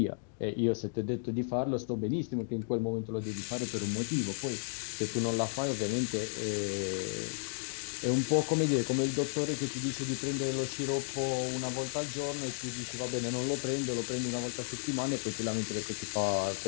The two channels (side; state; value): right; silent; digital silence